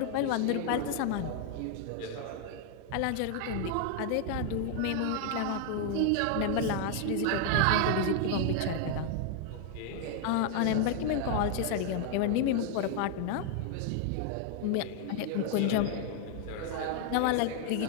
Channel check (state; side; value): different; both; correlation 0.00